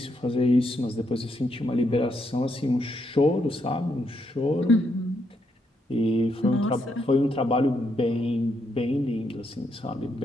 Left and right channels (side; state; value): both; normal; correlation 0.77